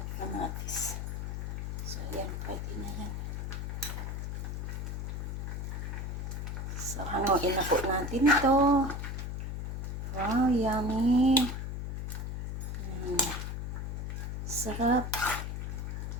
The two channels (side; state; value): left; noise; hum, 3 dB below the sound